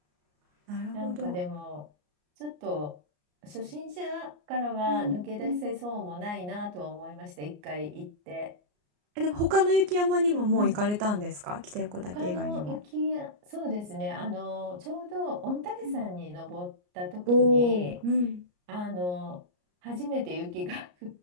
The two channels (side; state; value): left; late; 34 ms